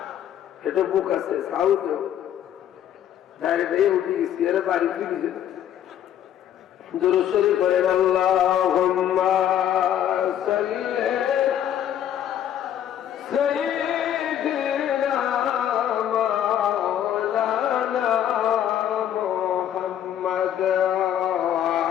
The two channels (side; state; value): right; quieter; 10.5 dB